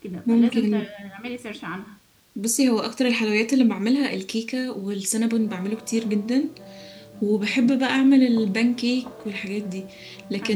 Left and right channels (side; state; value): both; identical; correlation 1.00